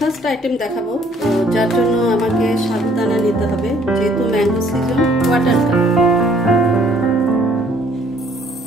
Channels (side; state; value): both; normal; correlation 0.62